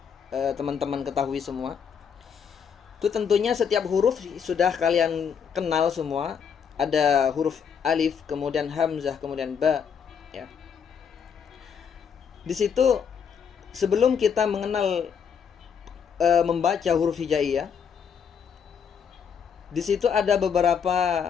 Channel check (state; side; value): quieter; right; 7.1 dB